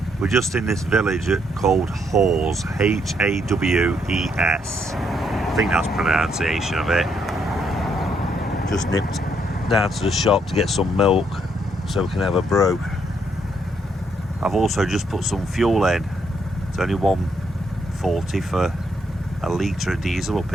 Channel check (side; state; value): both; normal; correlation 0.74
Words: We're just in this village called Hawes, H-A-W-E-S. I think that's pronunciation of it. Just nipped down to the shop to get some milk so we can have a brew. I've also just put some fuel in. It's only £1.40 for a litre of diesel up